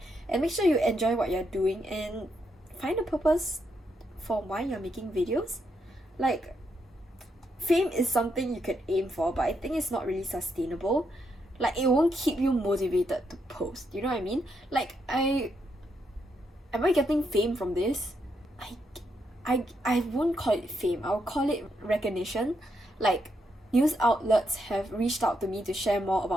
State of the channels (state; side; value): normal; both; correlation 0.79